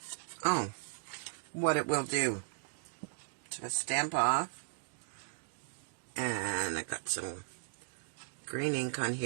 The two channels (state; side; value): silent; left; digital silence